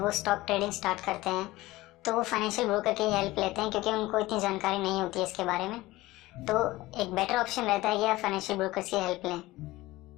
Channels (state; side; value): quieter; right; 18.7 dB